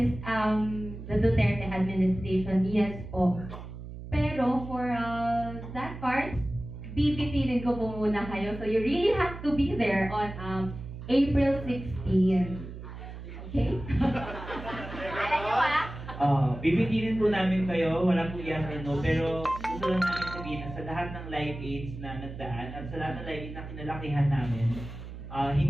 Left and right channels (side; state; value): right; noise; hum, 11 dB below the sound